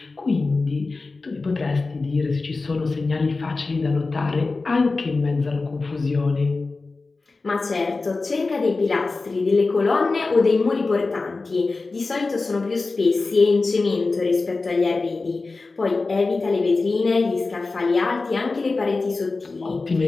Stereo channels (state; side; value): quieter; right; 3.7 dB